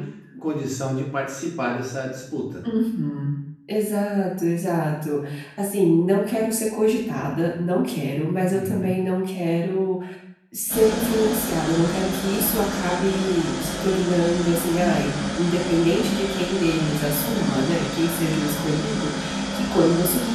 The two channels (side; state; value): both; identical; correlation 1.00